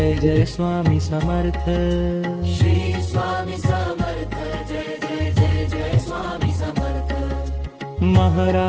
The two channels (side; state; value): both; identical; correlation 1.00